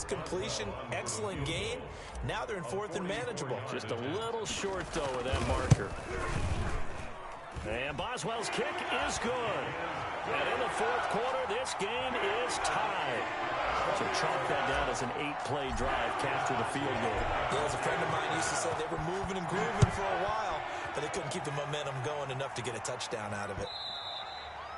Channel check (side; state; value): both; identical; correlation 1.00